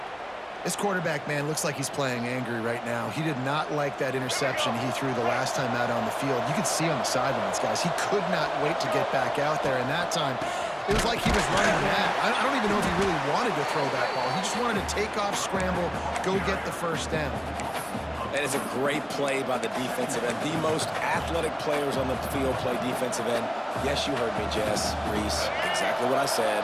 This quarterback, man, looks like he's playing angry right now. He did not like that interception he threw the last time out on the field. You could see on the sidelines, guys. He could not wait to get back out there, and that time, it was like he was running mad. I don't even know if he really wanted to throw that ball. He just wanted to take off, scramble, go get the first down. That is a great play by the defensive end. The most athletic players on the field play defensive end. Yes, you heard me, Jess, Reese. Exactly what I said.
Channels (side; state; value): both; identical; correlation 1.00